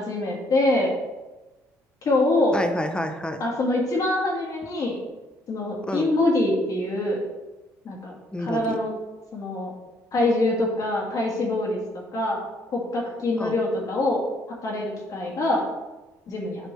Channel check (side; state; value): both; normal; correlation 0.68